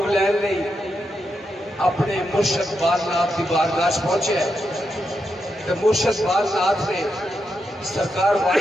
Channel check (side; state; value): both; normal; correlation 0.85